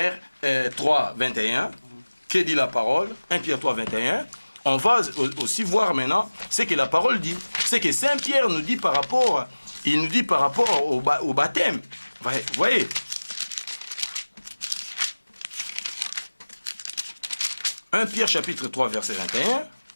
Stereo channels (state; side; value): inverted; both; correlation -1.00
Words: 3, 21. Que dit la parole? 1 Pierre 3, 21. On va aussi voir maintenant ce que la parole dit. C'est que Saint Pierre nous dit par rapport, au baptême. Vous voyez? 1 Pierre chapitre 3, verset 21.